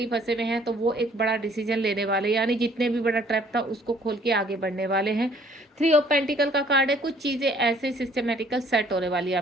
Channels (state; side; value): normal; both; correlation 0.59